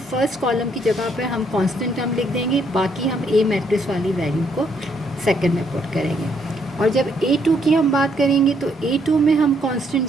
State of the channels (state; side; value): normal; both; correlation 0.71